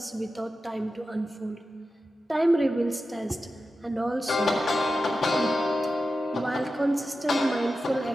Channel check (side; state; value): both; normal; correlation 0.92